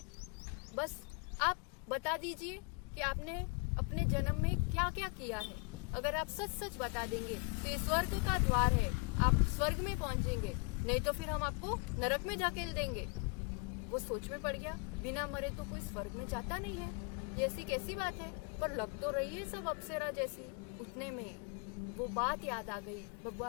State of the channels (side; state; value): right; quieter; 32.8 dB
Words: बस आप बता दीजिए कि आपने अपने जन्म में क्या क्या किया है। अगर आप सच सच बता देंगे तो ये स्वर्ग का द्वार है, आप स्वर्ग में पहुंचेंगे, नहीं तो फिर हम आपको नरक में धकेल देंगे। वो सोच में पड़ गया, बिना मरे तो कोई स्वर्ग में जाता नहीं है, ये ऐसी कैसी बात है, पर लग तो रही है सब अप्सरा जैसी। उतने में वो बात याद आ गई,